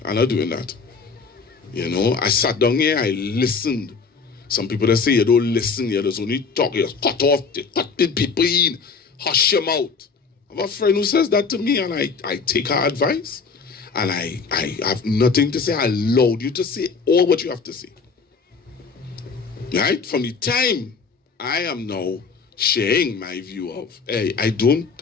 I'm not doing that. You know, I sat down here, I listened. Some people that say you don't listen, you just only talk, you cut off, you cut people in, hush your mouth. I have a friend who says that to me and I take her advice and I have nothing to say. I allowed you to say all what you have to say. Right? From the time I am now sharing my view of, hey, I don't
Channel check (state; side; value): quieter; right; 5.0 dB